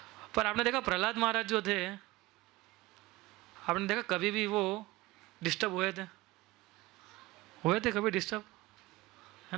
पर आपने देखा प्रहलाद महाराज जो थे, आपने देखा कभी भी वो डिस्टर्ब हुए थे कभी डिस्टर्ब,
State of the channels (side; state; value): left; quieter; 19.8 dB